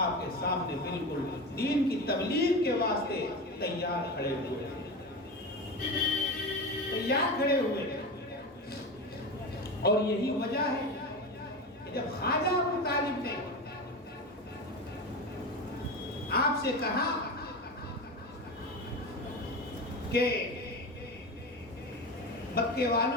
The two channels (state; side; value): normal; both; correlation 0.24